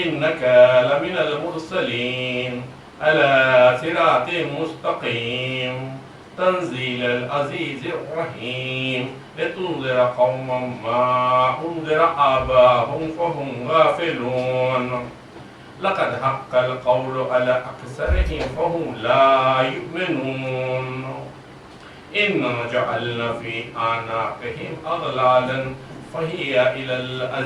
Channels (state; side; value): identical; both; correlation 1.00